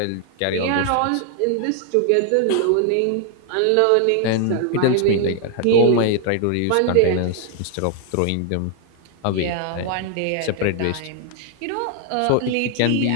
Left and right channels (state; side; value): different; both; correlation 0.00